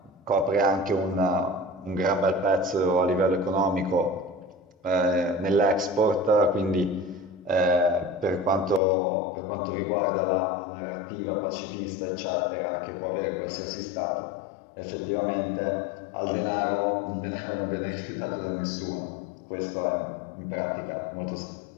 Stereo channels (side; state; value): right; drops out; at 8.8 s